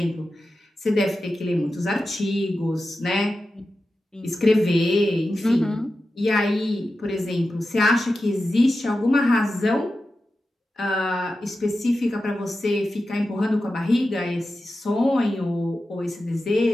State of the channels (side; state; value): both; normal; correlation 0.92